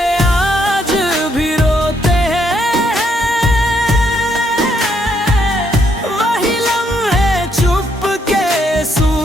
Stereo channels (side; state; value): both; normal; correlation 0.73